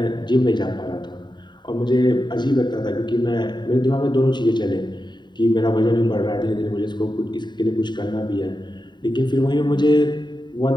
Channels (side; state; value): right; late; 0.22 ms